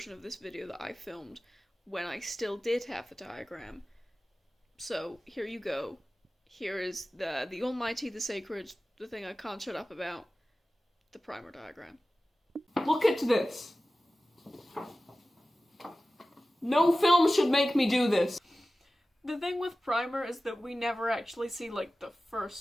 of this video that I filmed when I still did have the diagram. So, here you go. Here is the almighty, the sacred, the thing I can't shut up about, the Primer diagram. Look at this! No film should make me do this! The thing with Primer is that we never actually see, like, the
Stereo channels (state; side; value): normal; both; correlation 0.96